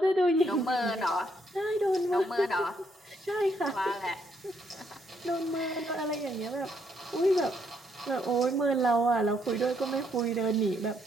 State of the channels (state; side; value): normal; both; correlation 0.73